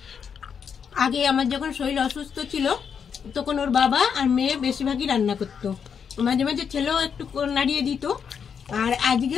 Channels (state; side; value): quieter; right; 7.0 dB